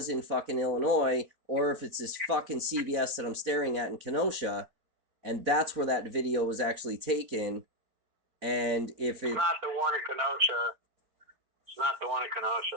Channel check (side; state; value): left; late; 4.1 ms